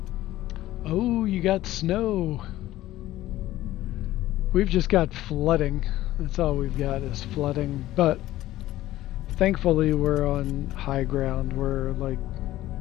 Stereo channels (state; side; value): quieter; right; 15.2 dB